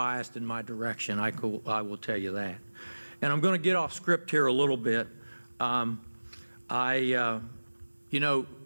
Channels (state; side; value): inverted; both; correlation -1.00